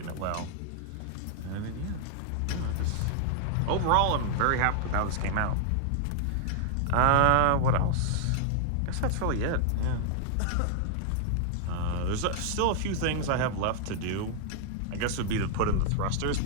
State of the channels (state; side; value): different; both; correlation 0.00